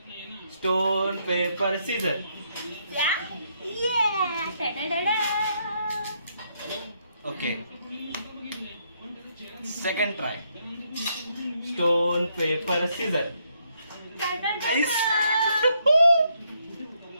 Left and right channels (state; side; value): inverted; both; correlation -0.75